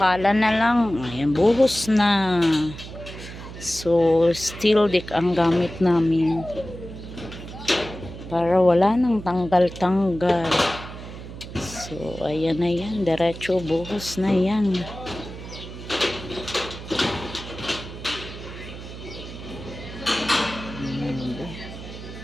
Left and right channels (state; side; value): noise; right; hum, 12 dB below the sound